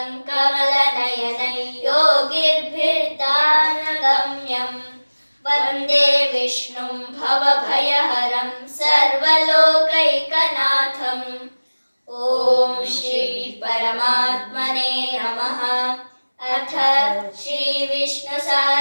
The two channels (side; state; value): both; inverted; correlation -1.00